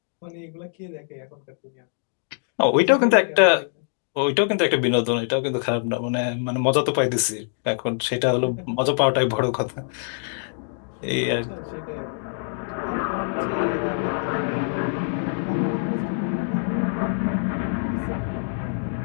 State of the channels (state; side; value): silent; right; digital silence